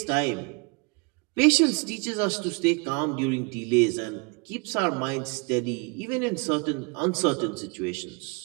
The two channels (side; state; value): left; quieter; 31.4 dB